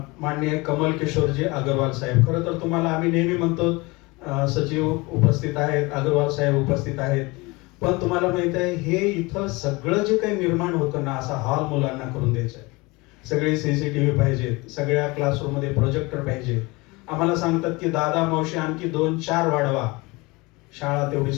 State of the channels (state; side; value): quieter; right; 24.5 dB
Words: माननीय कमल किशोरजी अग्रवाल साहेब. खरं तर तुम्हाला आम्ही नेहमी म्हणतो सचिव उपस्थित आहेत, अग्रवाल साहेब उपस्थित आहेत, पण तुम्हाला माहित आहे हे इथं सगळं जे काही निर्माण होतं ना, असा हॉल मुलांना करून द्यायचा आहे. सगळे CCTV पाहिजेत, सगळ्या क्लासरूम मध्ये प्रोजेक्टर पाहिजे. आम्हाला सांगतात की दादा मावशी आणखी 2-4 वाढवा, शाळा तेवढी